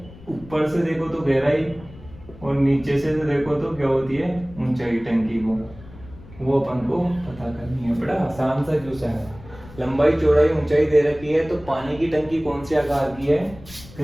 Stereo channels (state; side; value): noise; left; rumble, 19 dB below the sound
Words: ऊपर से देखो तो गहराई और नीचे से देखो तो क्या होती है ऊंचाई टंकी को, वो अपन को पता करनी है। बड़ा आसान सा क्वेश्चन है। लंबाई चौड़ाई ऊंचाई दे रखी है, तो पानी की टंकी कौन से आकार की है,